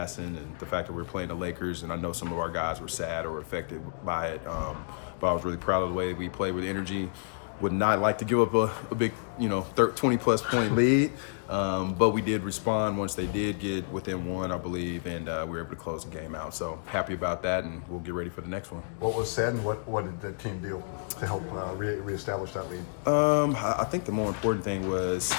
and the fact that we're playing the Lakers, and I know some of our guys were sad or affected by it, but I was really proud of the way we played with energy. Would not like to give up a big, 20-plus point lead, but we did respond once they did get within one, I believe, and we were able to close the game out. So happy about that, and we'll get ready for the next one. What was said, and what did the team do to help reestablish that lead? I think the more important thing was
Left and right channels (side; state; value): right; silent; digital silence